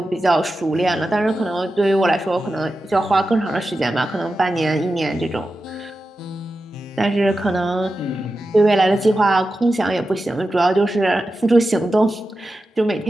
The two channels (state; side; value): normal; both; correlation 0.92